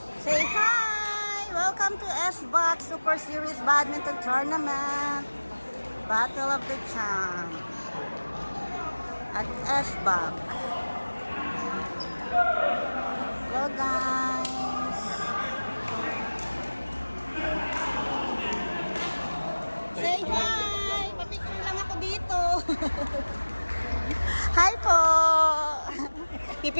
Say hi! Welcome to SBOX Super Series Badminton Tournament. Battle of the Champs at SBOX. Hello guys! Say hi! Papicture lang ako dito. Hi po!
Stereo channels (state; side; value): inverted; both; correlation -1.00